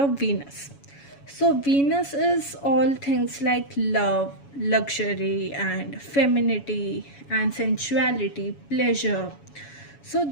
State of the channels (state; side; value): late; right; 7.1 ms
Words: Venus. So Venus is all things like love, luxury and femininity and sensuality, pleasure. So